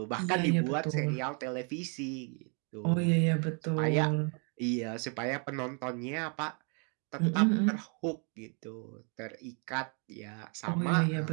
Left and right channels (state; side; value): quieter; left; 37.8 dB